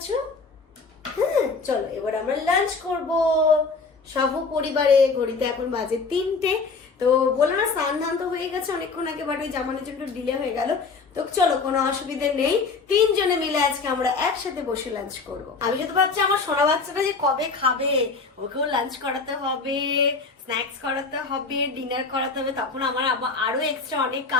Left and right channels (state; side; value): quieter; right; 4.4 dB